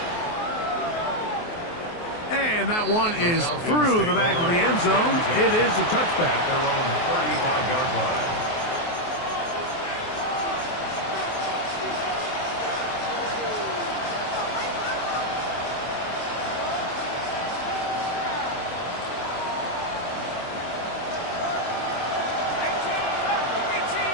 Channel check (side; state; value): right; late; 23 ms